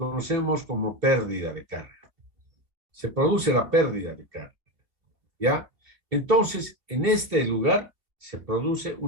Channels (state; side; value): late; left; 2.8 ms